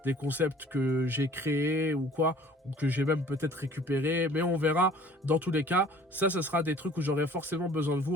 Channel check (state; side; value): normal; both; correlation 0.51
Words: des concepts que j'ai créés ou quoi, ou que j'ai même peut-être récupéré, mais on verra. Dans tous les cas, ça sera des trucs où j'aurai forcément besoin de vous.